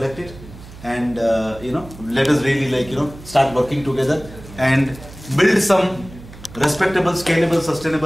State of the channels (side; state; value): right; noise; hum, 17 dB below the sound